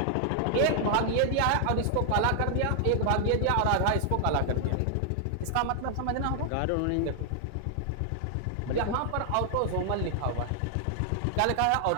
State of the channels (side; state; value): both; different; correlation 0.00